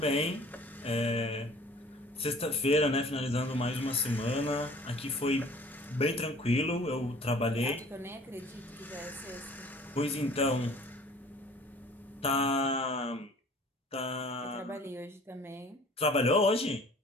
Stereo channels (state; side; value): normal; both; correlation 0.50